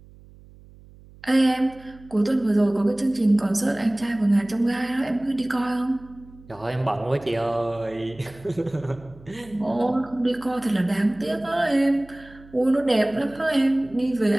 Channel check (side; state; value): right; noise; hum, 23 dB below the sound